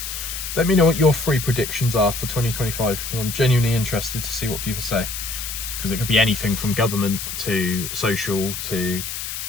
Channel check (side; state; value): left; noise; hiss, 6 dB below the sound